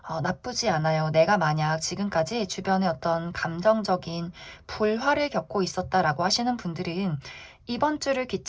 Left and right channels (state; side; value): identical; both; correlation 1.00